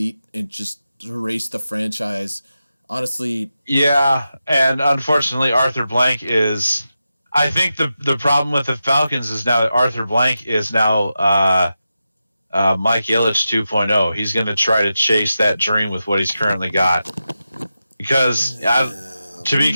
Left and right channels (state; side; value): inverted; both; correlation -0.90